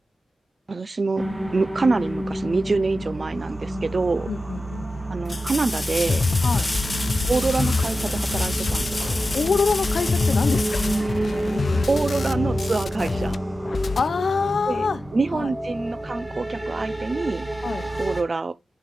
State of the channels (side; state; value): both; normal; correlation 0.92